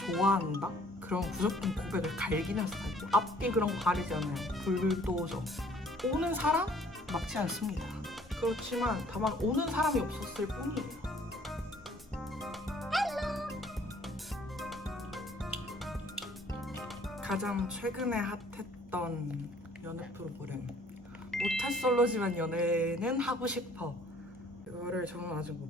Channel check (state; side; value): normal; both; correlation 0.58